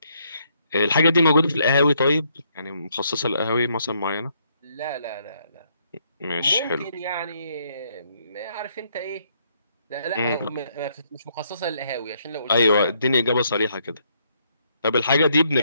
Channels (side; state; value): both; inverted; correlation -0.72